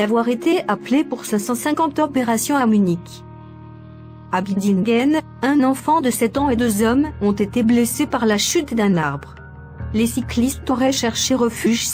été appelés pour 550 opérations à Munich. À Bidingen, un enfant de 7 ans et 2 hommes ont été blessés par la chute d'un arbre. Les cyclistes auraient cherché refuge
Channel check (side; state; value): both; identical; correlation 1.00